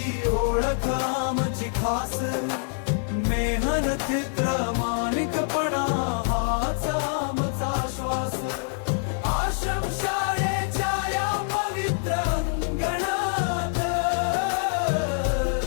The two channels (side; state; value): right; silent; 61 dB below the other